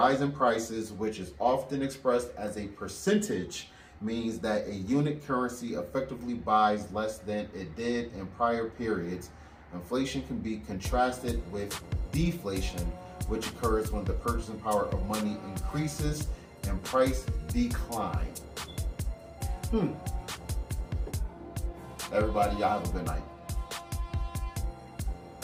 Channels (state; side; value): identical; both; correlation 1.00